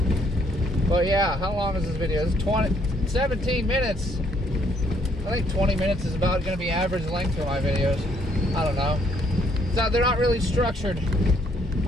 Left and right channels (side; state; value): both; normal; correlation 0.68